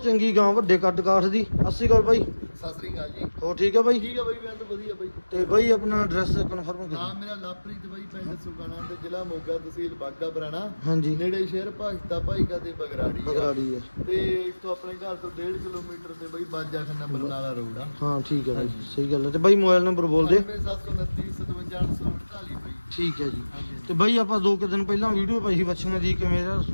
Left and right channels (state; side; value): inverted; both; correlation -1.00